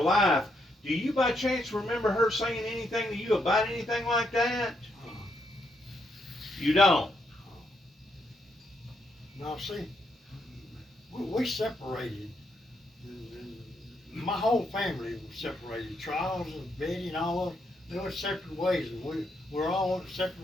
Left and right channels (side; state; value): both; normal; correlation 0.78